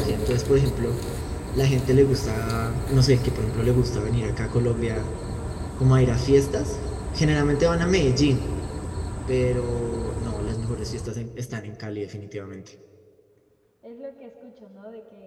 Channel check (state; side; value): identical; both; correlation 1.00